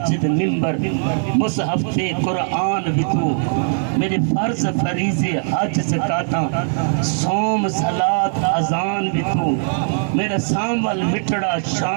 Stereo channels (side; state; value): left; silent; 63 dB below the other